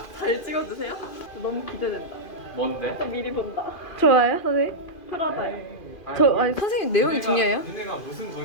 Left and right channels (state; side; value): late; right; 2.4 ms